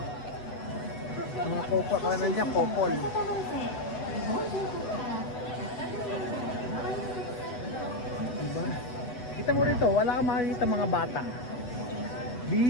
Mga kopa kanan niya, popol. Diba? Kita mo rito, wala kang makikita mga bata.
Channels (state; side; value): late; right; 8.1 ms